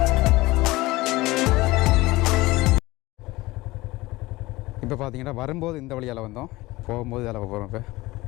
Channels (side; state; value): right; quieter; 20.0 dB